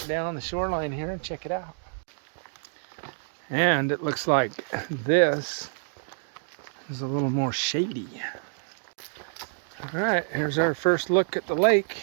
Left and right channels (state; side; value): silent; left; digital silence